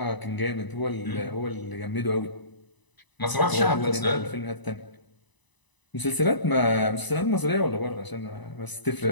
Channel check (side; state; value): right; late; 1.0 ms